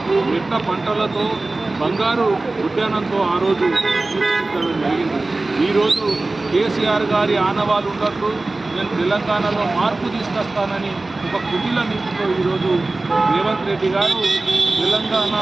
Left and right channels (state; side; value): quieter; left; 3.1 dB